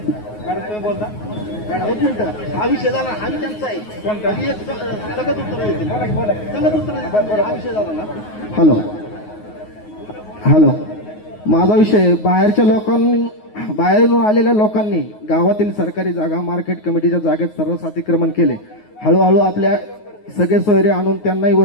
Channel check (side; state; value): right; late; 9.5 ms